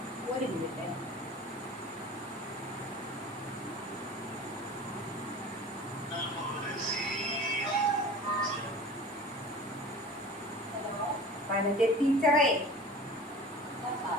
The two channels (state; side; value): normal; both; correlation 0.39